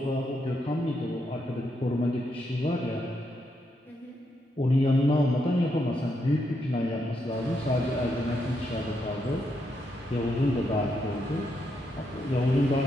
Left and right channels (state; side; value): normal; both; correlation 0.80